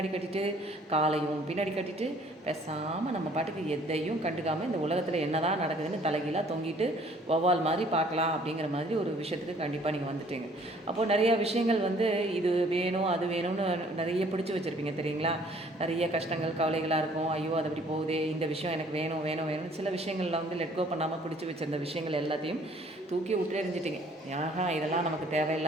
கட்டிட்டு காலையும் பின்னாடி கட்டிட்டு பேசாமல் நம்ம பாட்டுக்கு எதையும் கண்டுக்காமல் இந்த உலகத்தில் என்ன தான் நடக்குதுன்னு தலைகீழாக தொங்கிட்டு வௌவால் மாதிரி பார்க்கலாம் அப்படிங்கிற மாதிரி ஒரு விஷயத்துக்கு கண்டிப்பாக நீங்கள் வந்துட்டீங்க. அப்போது நிறையா விஷயங்கள் வந்து இது வேணும் அது வேணும்னு நிறைய பிடிச்சி வச்சுருப்பீங்க தெரியுங்களா. நிறைய கஷ்டங்கள் கவலைகளாக இருக்கும். ஐயோ அது அப்படி போகுதே, இந்த விஷயம் எனக்கு வேணும் வேணும் வேணும்னு சில விஷயங்களில் வந்து லெட் கோ பண்ணாமல் பிடிச்சி வச்சுருந்த விஷயங்கள் எல்லாத்தையும் தூக்கி விட்டு எறிஞ்சிட்டிங்க. இதெல்லாம் நமக்கு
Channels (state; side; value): normal; both; correlation 0.58